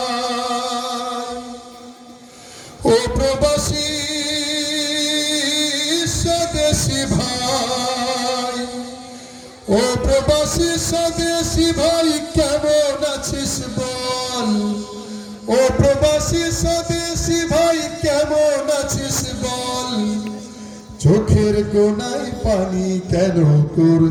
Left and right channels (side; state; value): both; identical; correlation 1.00